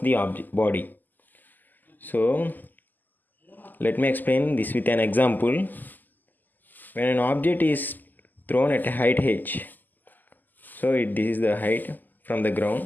the body. So let me explain this with an example. When an object is thrown at a height h, this is the height from the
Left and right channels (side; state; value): right; late; 0.086 ms